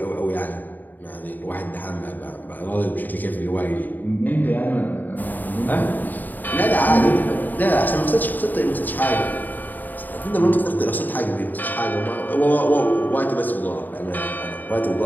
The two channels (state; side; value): late; right; 0.087 ms